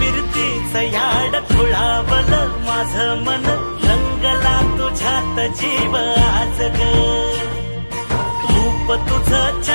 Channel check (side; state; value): both; inverted; correlation -1.00